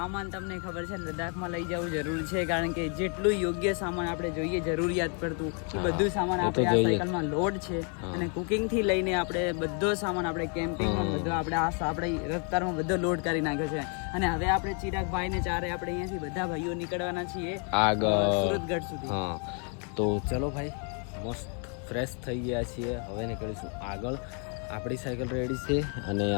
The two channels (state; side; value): quieter; right; 39.2 dB